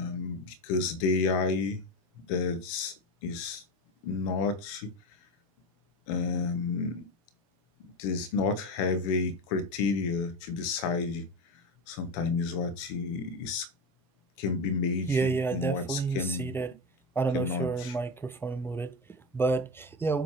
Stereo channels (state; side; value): normal; both; correlation 0.20